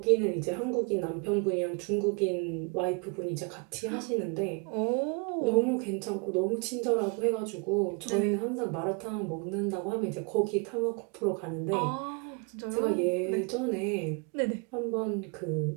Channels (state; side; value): quieter; left; 34.4 dB